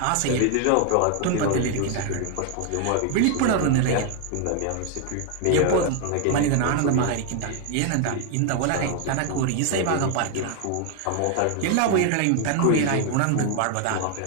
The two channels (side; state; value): both; different; correlation 0.00